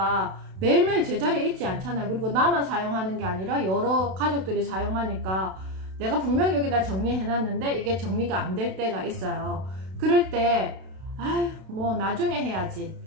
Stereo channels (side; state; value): left; late; 32 ms